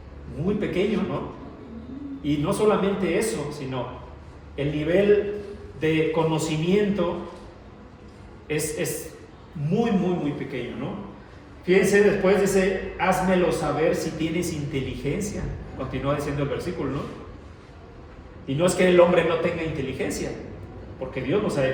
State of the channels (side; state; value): both; identical; correlation 1.00